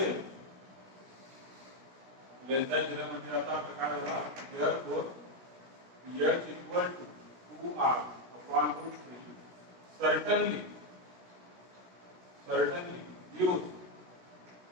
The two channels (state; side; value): late; left; 17 ms